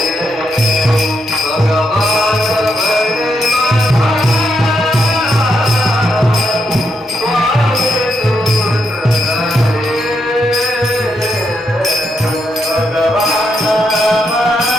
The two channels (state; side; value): normal; both; correlation 0.80